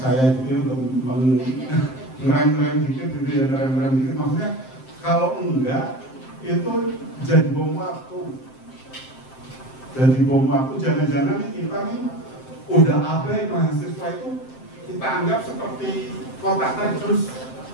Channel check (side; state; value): right; late; 7.7 ms